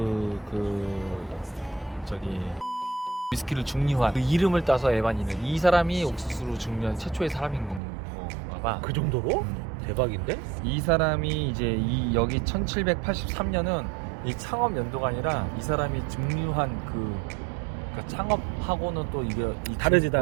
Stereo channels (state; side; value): drops out; left; at 7.8 s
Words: 저기 위스키를 증류한 그 이름을 따서 에반이는, 이 사람이 옥수수로 증류한 최초의 사람인 건가 봐. 그 정도로? 대박인데? 이 사람이 이제 여기 1783년은 이 창업 연도가 아니라 이 사람이 증류한 그러니까 창업하고는 또 이게 다르지.